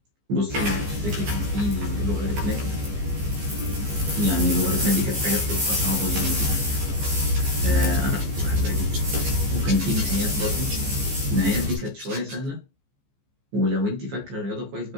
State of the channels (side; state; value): left; late; 15 ms